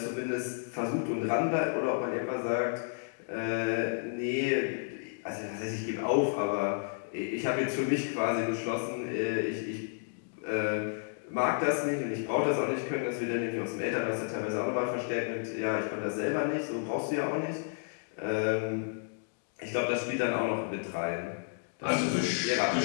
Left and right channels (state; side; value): silent; right; digital silence